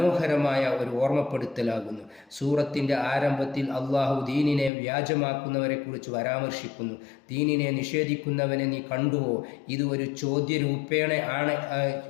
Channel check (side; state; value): right; drops out; at 4.7 s